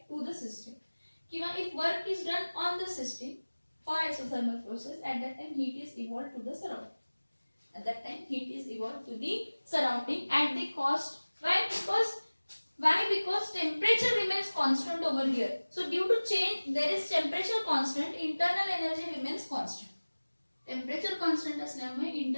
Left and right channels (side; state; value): both; inverted; correlation -1.00